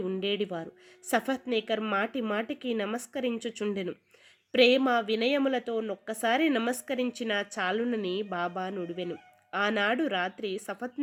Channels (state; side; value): identical; both; correlation 1.00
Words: ఉండేడివారు. సఫత్నేకర్ మాటి మాటికి నమస్కరించుచుండెను. ప్రేమ వినయములతో నొక్కసారి నమస్కరించిన చాలునని బాబా నుడివెను. ఆనాడు రాత్రి